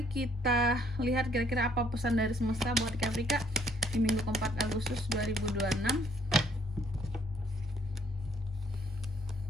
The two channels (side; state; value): both; normal; correlation 0.64